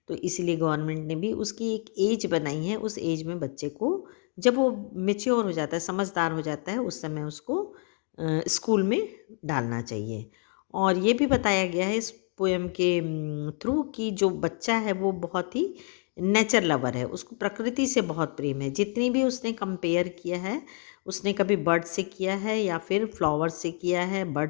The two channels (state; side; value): quieter; right; 37.5 dB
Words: तो इसीलिए गवर्नमेंट ने भी उसकी एक एज बनाई है, उस एज में बच्चे को, जब वो मैच्योर हो जाता है, समझदार हो जाता है, उस समय उसको स्कूल में डालना चाहिए। और ये भी बताया गया है इस पोएम के थ्रू कि जो बच्चा है वो बहुत ही नेचर लवर है, उसको प्रकृति से बहुत प्रेम है। जितनी भी उसने कंपेयर किया है, उसने कभी बर्ड से किया है या फिर फ्लावर से किया है,